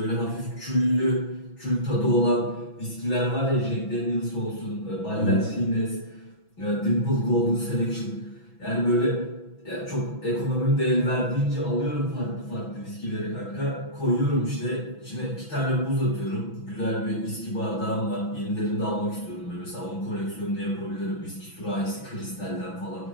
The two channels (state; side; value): late; right; 6.0 ms